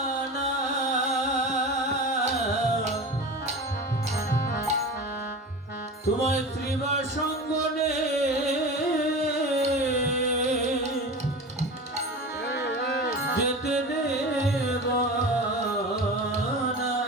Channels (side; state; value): both; normal; correlation 0.31